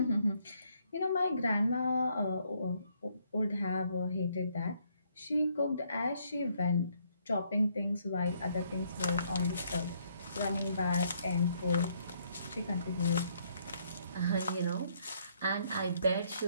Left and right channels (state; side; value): inverted; both; correlation -0.70